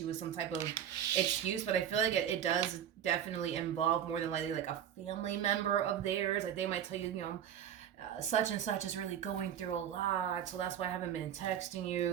with some type of excuse, but I feel like it does definitely involve more than likely like a family member of theirs. Like, they might tell you, you know, such and such is really going through a lot, so that's why I haven't been texting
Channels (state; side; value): quieter; left; 9.6 dB